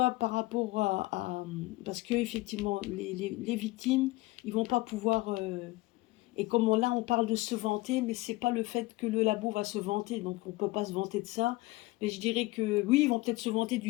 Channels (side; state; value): right; quieter; 20.6 dB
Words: par rapport parce que effectivement, les victimes, ils vont pas pouvoir et comme là, on parle de se vanter, mais c'est pas le fait que le labo va se vanter, donc on peut pas se vanter de ça. Mais je dirais que oui, ils vont peut-être se vanter